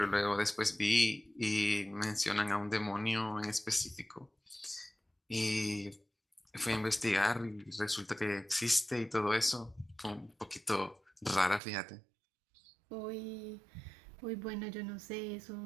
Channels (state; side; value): drops out; left; at 11.6 s